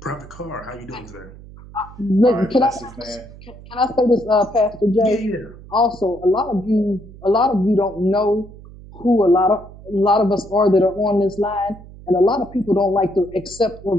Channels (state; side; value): noise; right; hum, 18 dB below the sound